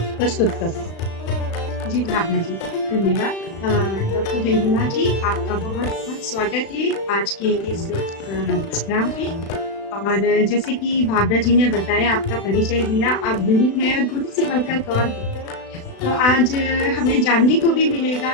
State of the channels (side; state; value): right; late; 36 ms